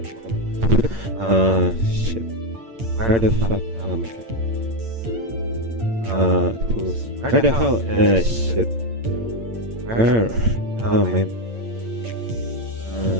god, shit. Where the fuck am I? Tools. Where the hell? Shit. Where? Oh man.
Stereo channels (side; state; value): left; late; 8.7 ms